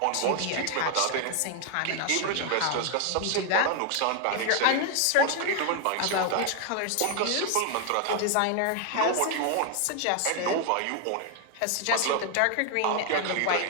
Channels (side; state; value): both; different; correlation 0.00